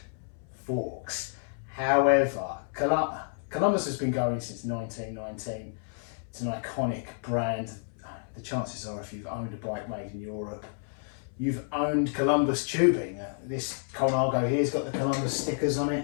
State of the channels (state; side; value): silent; right; 57 dB below the other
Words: forks. However, Columbus has been going since 1919. It's an iconic brand. The chances are, if you've owned a bike made in Europe, you've owned Columbus tubing. This Colnago here's got the Columbus stickers on